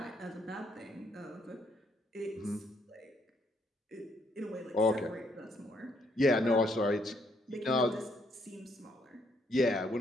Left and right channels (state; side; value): normal; both; correlation 0.71